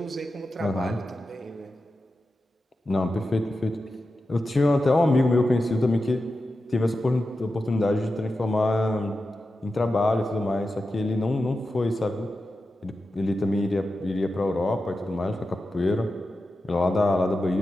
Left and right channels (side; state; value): both; normal; correlation 0.91